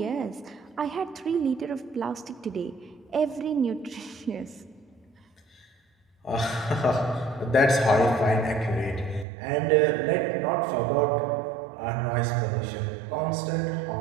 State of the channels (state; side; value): drops out; left; at 9.2 s